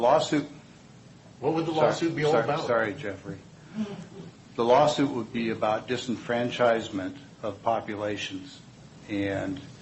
What would the lawsuit be all about? Sorry, Jeffrey. The lawsuit would be about disenfranchisement of populations. And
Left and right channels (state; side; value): identical; both; correlation 1.00